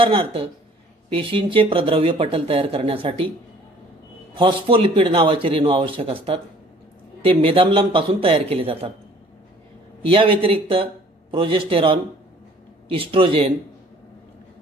पेशींचे प्रद्रव्य पटल तयार करण्यासाठी फॉस्फोलिपिड नावाचे रेणू आवश्यक असतात. ते मेदाम्लांपासून तयार केले जातात. या व्यतिरिक्त प्रोजेस्टेरॉन, इस्ट्रोजेन,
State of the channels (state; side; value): normal; both; correlation 0.54